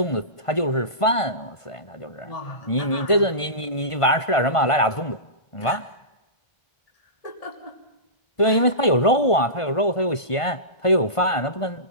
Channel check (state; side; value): late; right; 1.5 ms